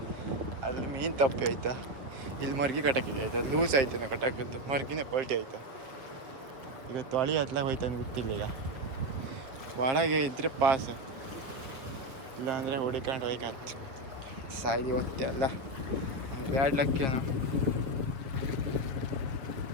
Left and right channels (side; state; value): left; late; 7.5 ms